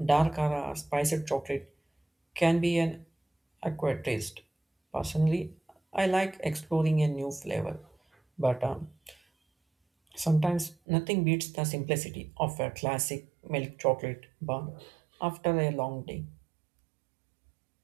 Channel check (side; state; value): left; drops out; at 10.8 s